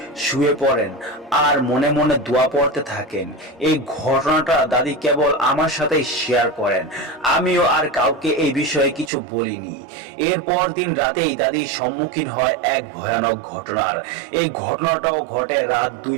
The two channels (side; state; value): left; drops out; at 9.1 s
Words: শুয়ে পড়েন আর মনে মনে দোয়া পড়তে থাকেন। এই ঘটনাটা দাদি কেবল আমার সাথেই শেয়ার করেন, আমিও আর কাউকে এই বিষয়ে কিছু বলিনি। এরপর দিন রাতেই দাদি সম্মুখীন হয় এক ভয়ানক ঘটনার। এই ঘটনাটাও ঘটে রাত